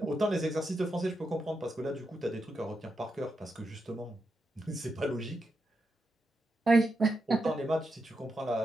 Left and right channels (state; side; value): normal; both; correlation 0.85